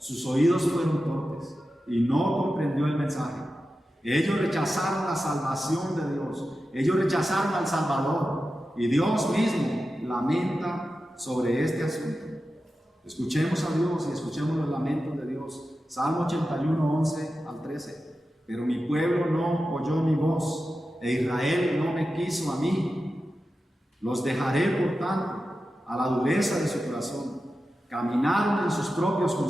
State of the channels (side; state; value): both; normal; correlation 0.92